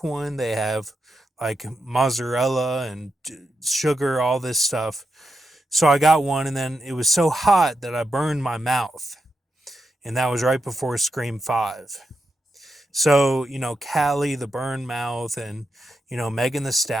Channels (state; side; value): normal; both; correlation 0.85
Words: one, they have like mozzarella and sugar, all this stuff. So I got one, and then it was so hot that I burned my mouth. And that was right before Scream 5. So, Callie, the burn mouth, and, Megan the